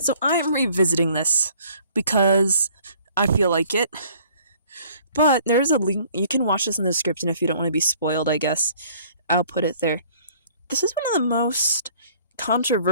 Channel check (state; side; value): inverted; both; correlation -0.56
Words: I am revisiting this because I feel like it. But there's a link. You can watch this in the description if you don't want to be spoiled, I guess. I'll put it there. This is one of the most